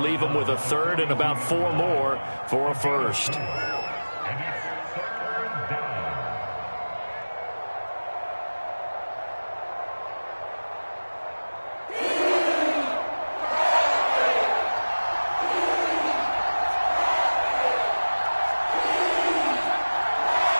him with a third and about 4 more for a first.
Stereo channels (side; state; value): both; inverted; correlation -1.00